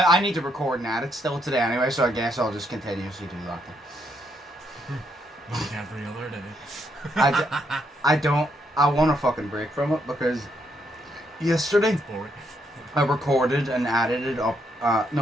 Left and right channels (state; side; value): normal; both; correlation 0.76